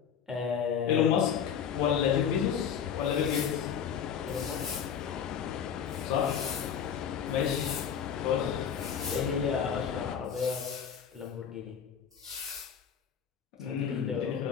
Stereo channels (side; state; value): right; quieter; 7.9 dB